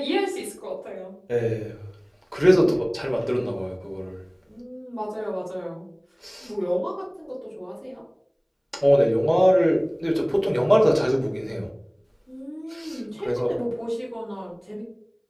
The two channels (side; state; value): both; identical; correlation 1.00